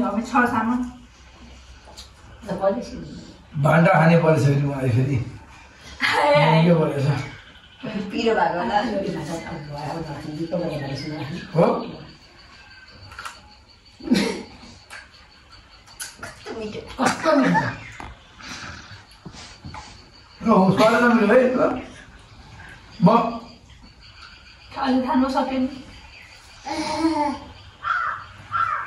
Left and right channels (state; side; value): identical; both; correlation 1.00